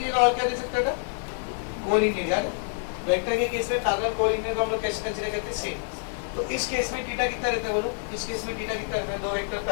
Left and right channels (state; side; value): silent; right; digital silence